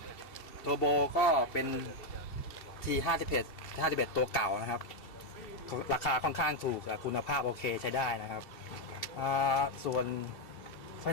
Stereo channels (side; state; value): right; late; 2.7 ms